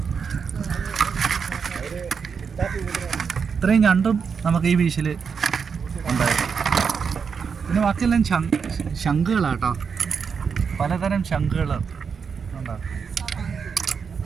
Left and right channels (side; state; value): left; quieter; 6.1 dB